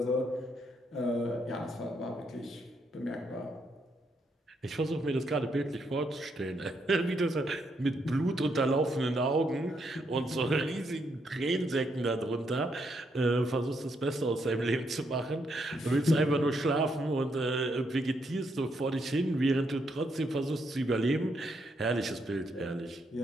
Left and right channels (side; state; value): both; normal; correlation 0.77